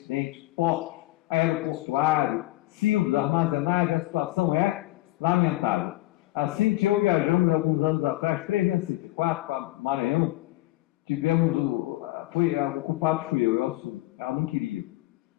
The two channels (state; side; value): quieter; right; 18.2 dB